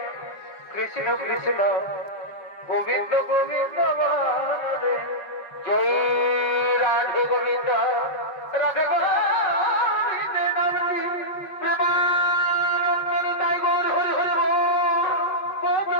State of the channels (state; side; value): late; right; 5.4 ms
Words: কৃষ্ণ কৃষ্ণ গোবিন্দ গোবিন্দ রাধে জয় রাধে গোবিন্দ রাধে গোবিন্দে নামটি প্রেমানন্দে তাই গৌর হরি হরি